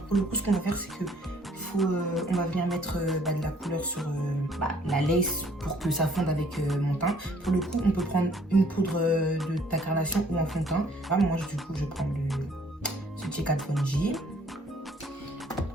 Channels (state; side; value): normal; both; correlation 0.61